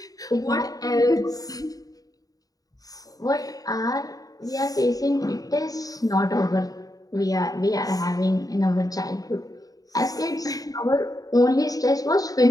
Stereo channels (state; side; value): late; right; 0.18 ms